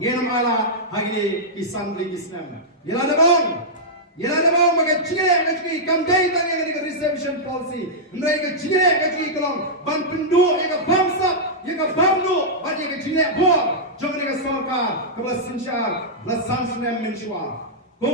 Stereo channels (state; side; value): normal; both; correlation -0.11